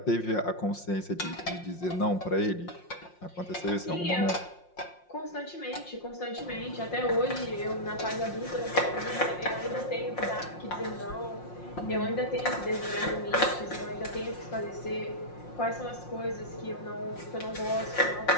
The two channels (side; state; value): right; late; 5.6 ms